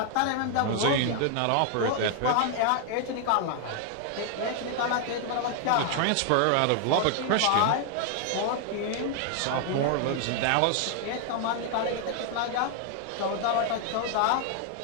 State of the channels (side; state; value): both; different; correlation 0.00